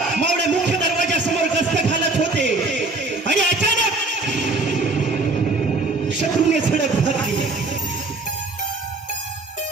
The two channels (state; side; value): quieter; left; 3.2 dB